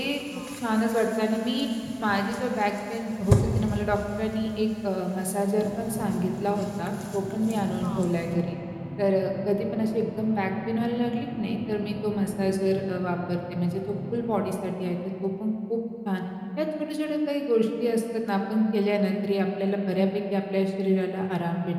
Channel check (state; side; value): identical; both; correlation 1.00